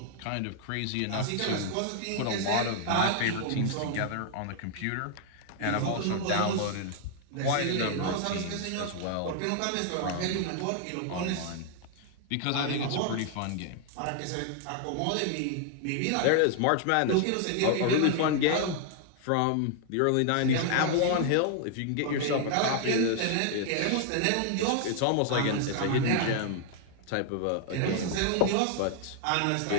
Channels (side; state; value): both; different; correlation 0.00